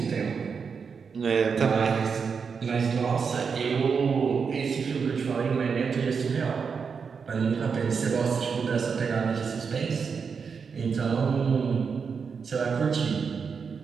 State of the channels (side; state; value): left; quieter; 5.8 dB